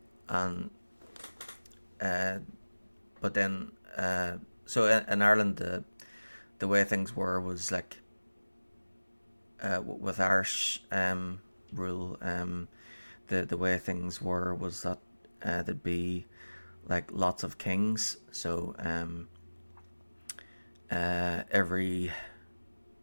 but then so in Ireland the way things were was like with Irish rule, the way things were was that there'd be like lots of kings. So every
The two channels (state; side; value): inverted; both; correlation -1.00